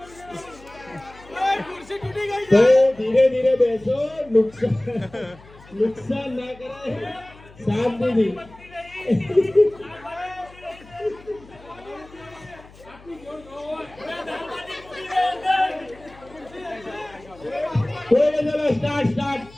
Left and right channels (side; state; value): left; noise; hum, 23 dB below the sound